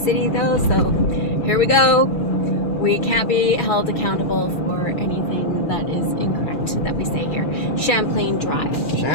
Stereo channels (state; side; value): late; right; 2.4 ms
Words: though, so here we go. We can't be held accountable for anything that is incorrect that we say here. Champlain Drive.